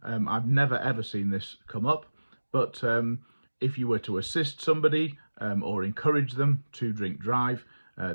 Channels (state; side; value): inverted; both; correlation -1.00